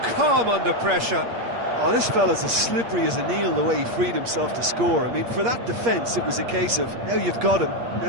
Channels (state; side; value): late; left; 8.5 ms